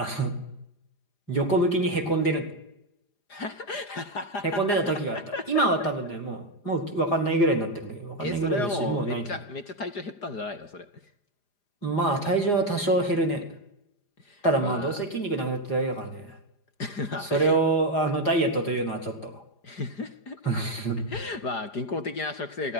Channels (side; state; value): right; late; 4.9 ms